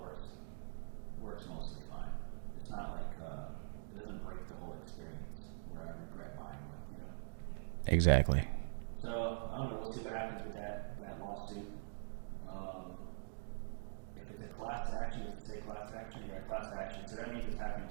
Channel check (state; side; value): silent; left; digital silence